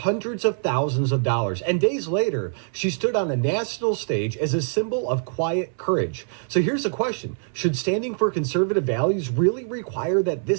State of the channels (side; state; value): left; silent; 60 dB below the other